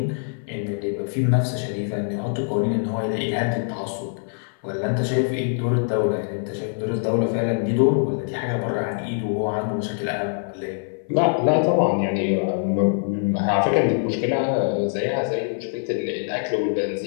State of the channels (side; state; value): right; silent; 57 dB below the other